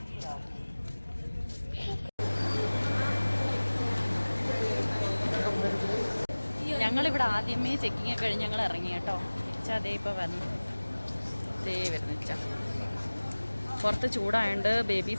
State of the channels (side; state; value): both; inverted; correlation -1.00